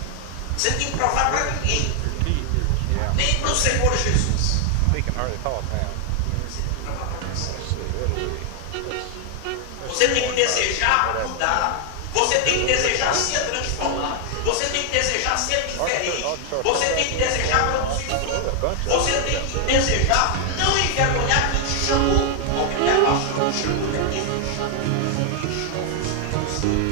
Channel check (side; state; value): both; different; correlation 0.00